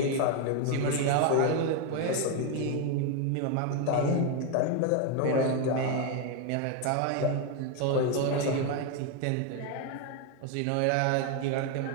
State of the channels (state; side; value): different; both; correlation 0.02